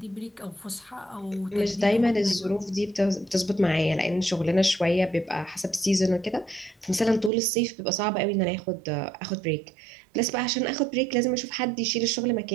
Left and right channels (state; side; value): drops out; left; at 7.3 s